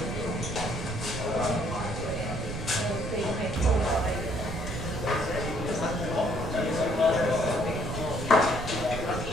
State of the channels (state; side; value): noise; right; rumble, 6 dB below the sound